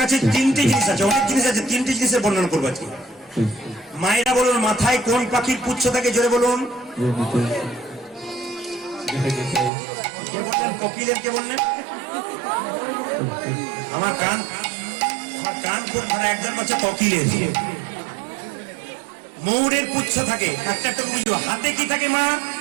3টে জিনিস আছে, অনেক জিনিস আছে, 3টে জিনিসের বর্ণনা করবো আজকে। মায়েরা বলুন, মাথায় কোন পাখির পুচ্ছ থাকে? জোরে বলুন। কে বললেন? কোকিলের। কে বললেন? আমার কান খুব খারাপ। একজন বলছে কোকিলের। ময়ূরের পুচ্ছ থাকে, একটা একটা বুঝবো। হাতে কি থাকে মা?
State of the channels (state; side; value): drops out; left; at 9.7 s